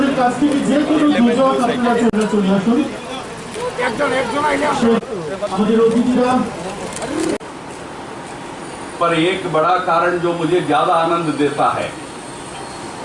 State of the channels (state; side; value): identical; both; correlation 1.00